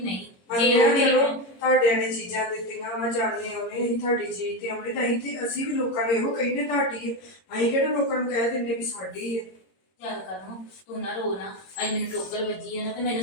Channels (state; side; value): late; right; 22 ms